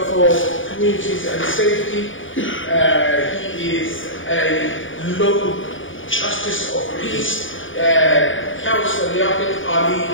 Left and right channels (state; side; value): late; right; 0.57 ms